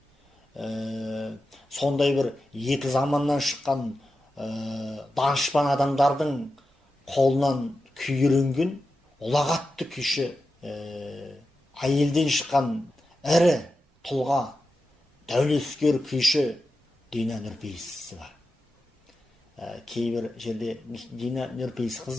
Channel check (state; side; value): normal; both; correlation 0.91